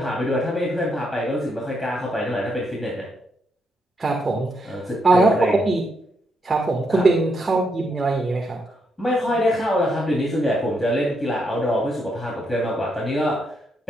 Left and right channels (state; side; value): normal; both; correlation 0.78